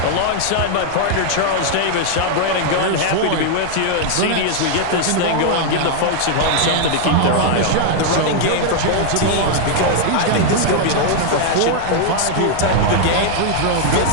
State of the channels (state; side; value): different; both; correlation 0.00